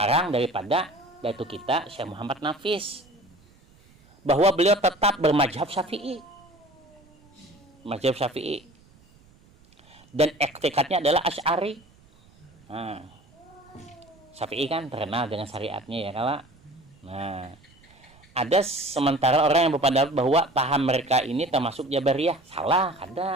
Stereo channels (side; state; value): right; noise; rumble, 28 dB below the sound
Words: daripada datu kita Syekh Muhammad Nafis, bahwa beliau tetap bermazhab Syafi'i, mazhab Syafi'i, dan etikatnya adalah Asy'ari. Nah, Syafi'i kan terkenal dengan syariatnya ya kalau. Nah, ada sementara orang yang berpendapat bahwa paham mereka ini termasuk Jabariyah. Salah,